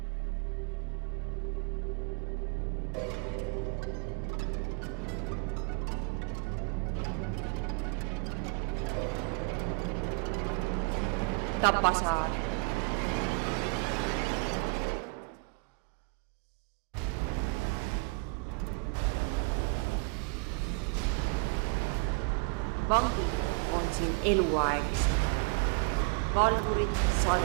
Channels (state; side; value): quieter; left; 31.5 dB